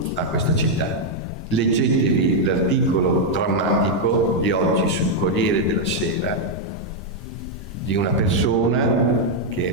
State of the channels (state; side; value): normal; both; correlation -0.01